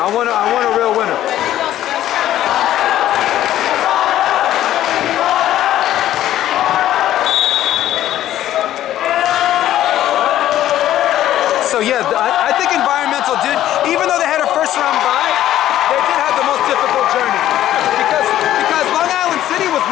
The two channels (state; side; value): quieter; right; 12.8 dB